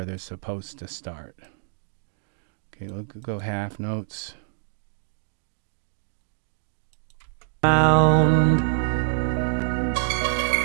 they're supposed to start. Okay, we'll go half notes. Round.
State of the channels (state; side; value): silent; left; digital silence